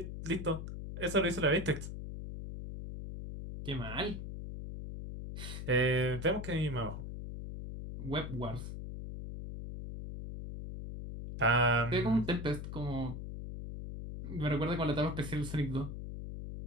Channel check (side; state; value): left; noise; hum, 7 dB below the sound